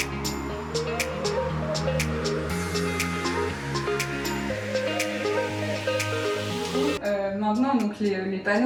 Maintenant, donc les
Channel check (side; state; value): both; identical; correlation 1.00